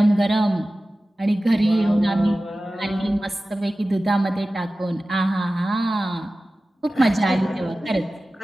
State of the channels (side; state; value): both; normal; correlation 0.96